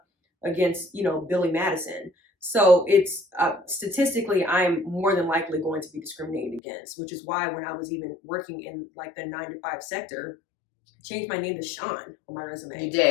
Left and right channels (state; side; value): drops out; right; at 6.6 s